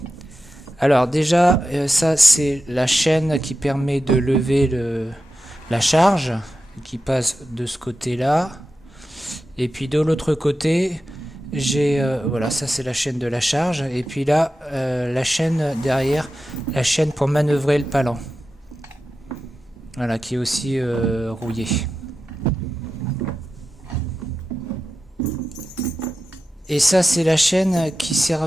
Alors déjà, ça c'est la chaîne qui permet de lever la charge, qui passe de ce côté-là. Et puis de l'autre côté, j'ai voilà, ça c'est la chaîne de la charge. Et puis là, la chaîne derrière, la chaîne pour manœuvrer le palan. Voilà, qui est aussi rouillée. Et ça, c'est la chaîne qui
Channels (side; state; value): both; normal; correlation 0.92